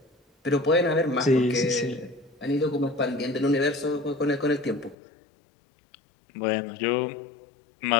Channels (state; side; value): drops out; right; at 5.0 s